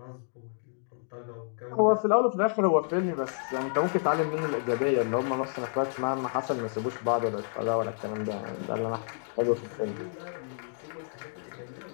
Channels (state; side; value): silent; right; digital silence